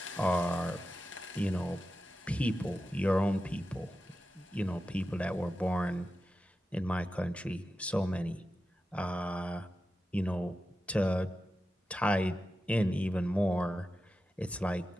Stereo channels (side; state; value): both; normal; correlation 0.92